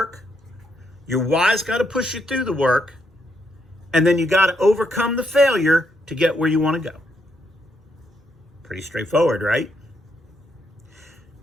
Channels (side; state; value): both; normal; correlation 0.77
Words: Your why's got to push you through the work. And then you got to overcome the failure to get where you want to go. Pretty straightforward, right?